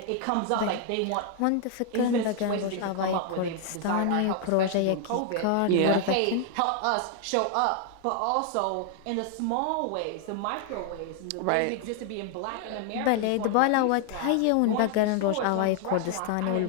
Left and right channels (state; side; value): different; both; correlation 0.00